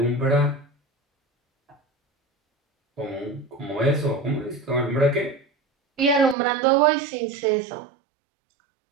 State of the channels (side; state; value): left; drops out; at 6.4 s